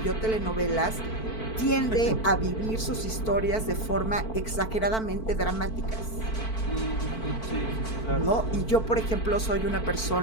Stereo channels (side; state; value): right; late; 4.5 ms